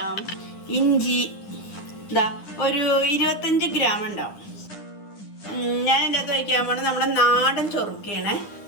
ഇഞ്ചി ഒരു 25 ഗ്രാം ഉണ്ടാവും. ഞാൻ ഇതിൻ്റെ അകത്ത് വയ്ക്കാൻ പോകുന്നത് നമ്മുടെ നാടൻ ചൊറുക്കയാണ്,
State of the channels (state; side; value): late; right; 9.9 ms